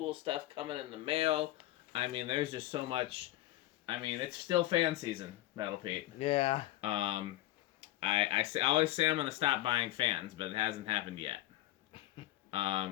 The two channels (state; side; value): quieter; right; 15.8 dB